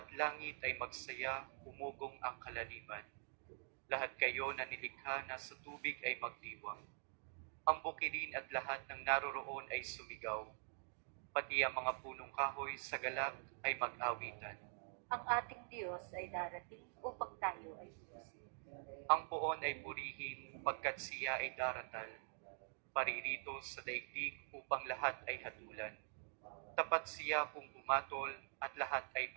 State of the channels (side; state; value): left; silent; digital silence